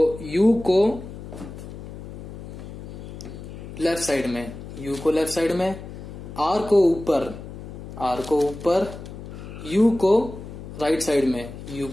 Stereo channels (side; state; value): left; noise; hum, 12 dB below the sound